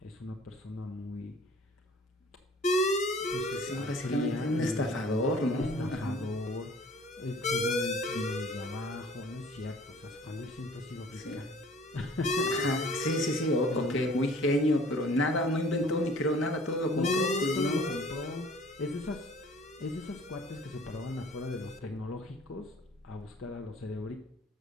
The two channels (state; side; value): normal; both; correlation 0.51